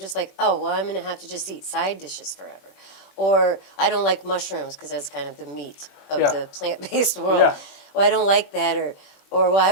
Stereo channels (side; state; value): right; late; 21 ms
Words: like, oh, well, I'm going to have to just eat side dishes forever. Or I don't like mushrooms because that's kind of the meat of Yeah. the plant-based world. Yeah. Well, I don't like that. Or well,